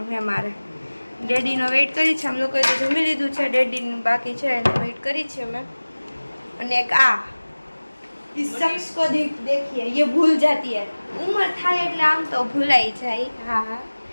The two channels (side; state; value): both; inverted; correlation -1.00